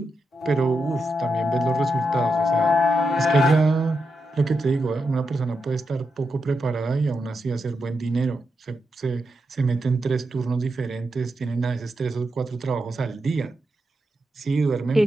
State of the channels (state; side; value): normal; both; correlation 0.86